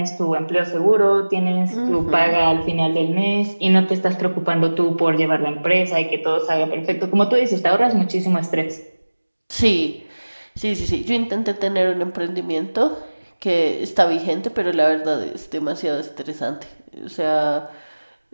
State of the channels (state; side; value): inverted; both; correlation -1.00